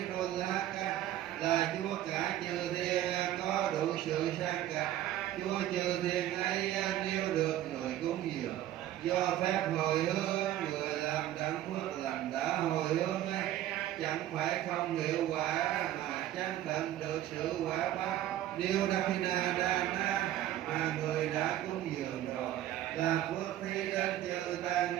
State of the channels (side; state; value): left; quieter; 13.0 dB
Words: Đô La Ca là Chúa cả chư thiên có đủ sự sang cả. Chúa chư thiên ấy nếu được người cúng dường do phép hồi hướng, người làm đặng phước lành đã hồi hướng ấy chẳng phải không hiệu quả mà chẳng tận được sự quả báo. Điều Dakinadana mà người đã cúng dường rồi là phước thi đến chư tăng